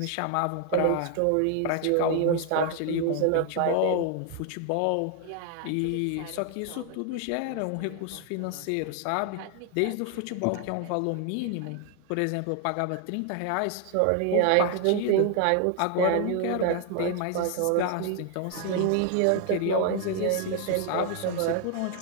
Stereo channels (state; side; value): different; both; correlation 0.00